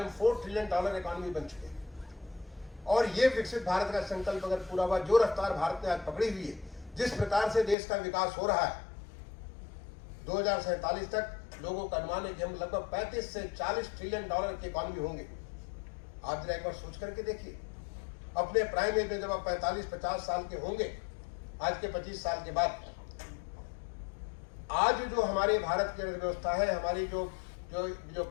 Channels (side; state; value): right; drops out; at 7.8 s